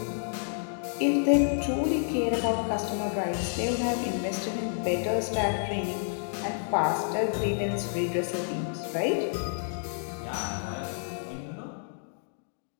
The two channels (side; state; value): right; silent; digital silence